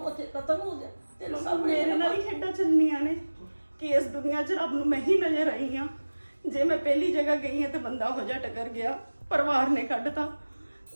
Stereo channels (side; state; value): both; inverted; correlation -1.00